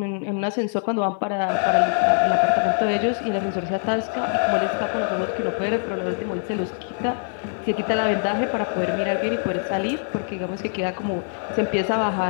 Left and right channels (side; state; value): right; silent; 55 dB below the other